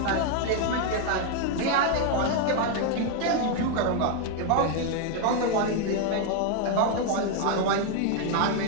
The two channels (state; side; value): different; both; correlation 0.00